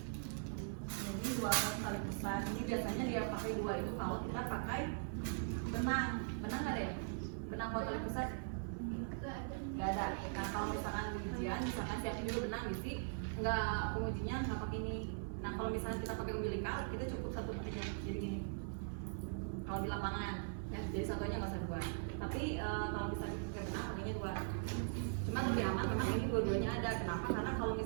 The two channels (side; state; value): left; silent; 50 dB below the other